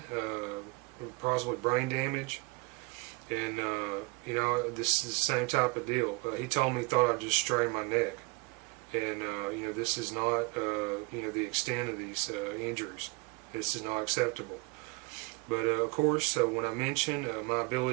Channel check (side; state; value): left; quieter; 27.8 dB